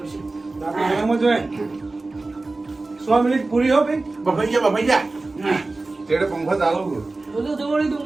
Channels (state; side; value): quieter; left; 3.3 dB